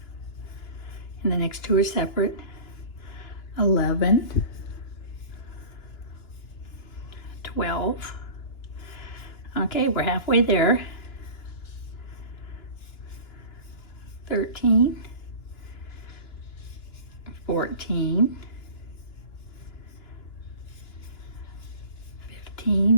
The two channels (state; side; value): late; right; 2.9 ms